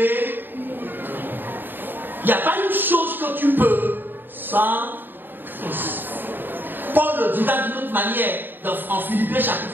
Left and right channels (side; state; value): left; late; 0.094 ms